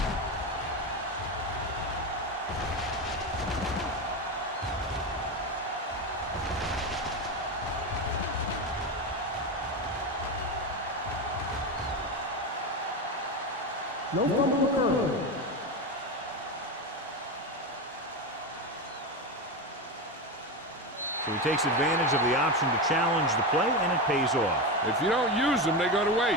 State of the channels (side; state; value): both; normal; correlation 0.17